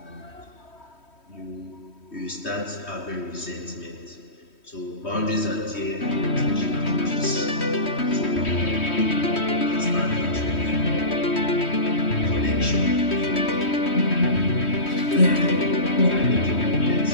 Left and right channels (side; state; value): right; late; 3.1 ms